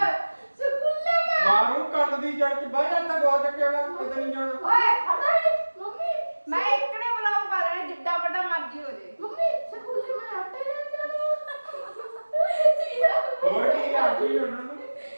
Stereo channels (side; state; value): both; inverted; correlation -1.00